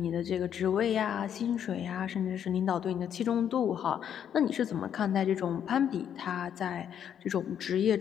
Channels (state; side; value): quieter; right; 9.1 dB